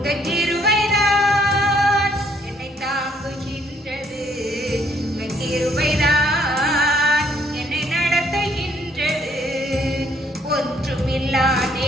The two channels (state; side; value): normal; both; correlation 0.66